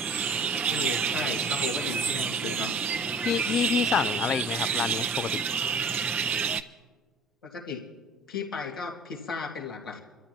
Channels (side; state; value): both; normal; correlation 0.44